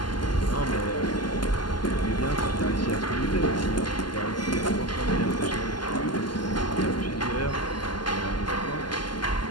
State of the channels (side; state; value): right; late; 0.71 ms